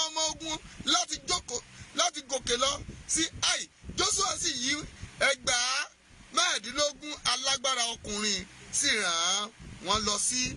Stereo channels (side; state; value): both; identical; correlation 1.00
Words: ọmọ ogun láti gòkè lọ sí Ai. Joshua sì yí ẹgbàá mẹ́ẹ̀ẹ́dínlógún alágbára ọkùnrin sì rán wọn lọ sí